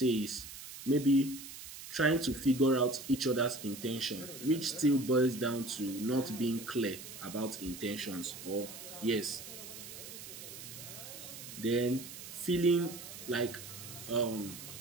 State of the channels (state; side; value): noise; right; hiss, 12 dB below the sound